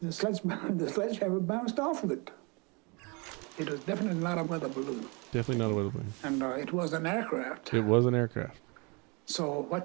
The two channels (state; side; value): quieter; left; 29.8 dB